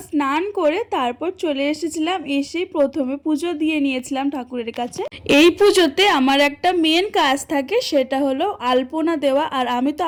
স্নান করে তারপর চলে এসেছিলাম। এসেই প্রথমে পুজো দিয়ে নিয়েছিলাম ঠাকুরের কাছে। এই পুজোতে আমার একটা মেন কাজ থাকে, সেটা হলো আলপনা দেওয়া। আর আমি তো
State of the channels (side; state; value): both; identical; correlation 1.00